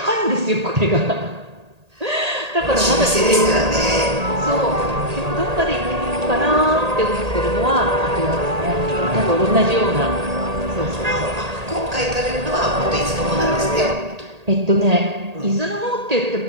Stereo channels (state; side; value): late; left; 1.8 ms